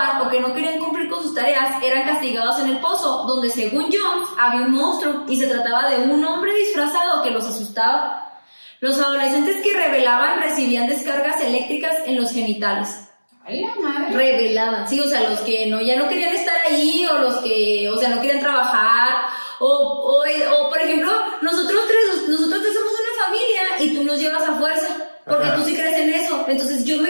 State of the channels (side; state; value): both; inverted; correlation -1.00